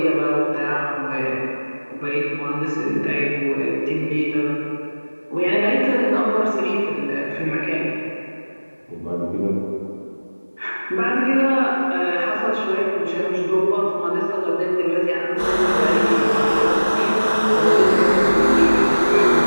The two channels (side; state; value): both; inverted; correlation -1.00